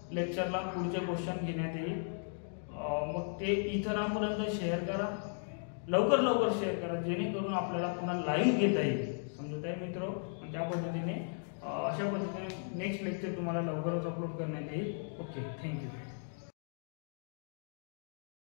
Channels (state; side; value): silent; right; digital silence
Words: लेक्चरला पुढचे क्वेश्चन घेण्यात येईल. मग ते इतरांपर्यंत शेअर करा. लवकर शेअर करा जेणेकरून आपल्याला पुन्हा लाईव्ह घेता येईल. समजत आहे मित्र. त्या पद्धतीने अशा पद्धतीने नेक्स्ट लेक्चर तुम्हाला लवकरच अपलोड करण्यात येईल. Okay thank you.